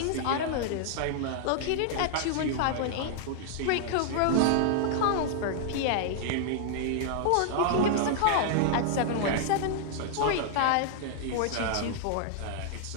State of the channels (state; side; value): different; both; correlation -0.01